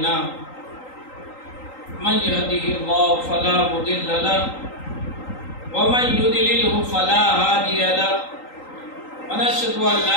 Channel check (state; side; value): late; right; 3.8 ms